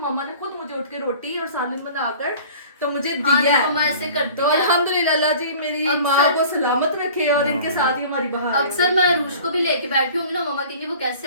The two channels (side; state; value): both; inverted; correlation -0.45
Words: ने खुद मुझे उठ के रोटी और सालन बनाकर तो मुझे दिया है। मम्मा ऐसे करती तो अल्हम्दुलिल्लाह, अल्लाह जी मेरी माँ को सलामत रखे और इनके साथ ही हमारी बहार। अक्सर मैं रूश को भी लेके बैठी हूँ ना, मम्मा कहेंगी वो